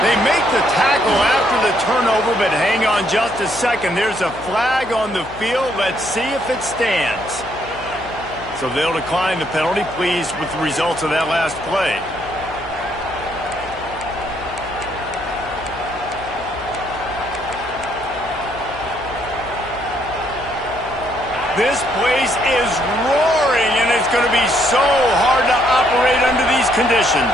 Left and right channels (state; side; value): noise; left; hum, 17 dB below the sound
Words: They make the tackle after the turnover, but hang on just a second. There's a flag on the field. Let's see if it stands. So they'll decline the penalty. Pleased with the results of that last play. This place is roaring, and it's going to be so hard to operate under these